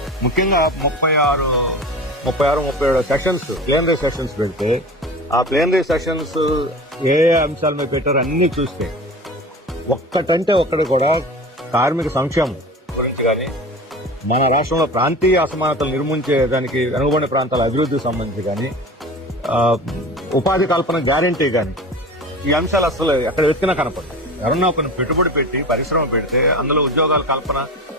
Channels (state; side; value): normal; both; correlation 0.34